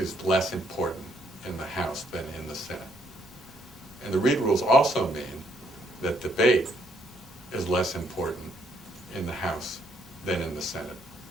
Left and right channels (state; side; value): normal; both; correlation 0.71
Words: is less important in the House than in the Senate. And the Reed rules also mean that debate is less important in the House than in the Senate.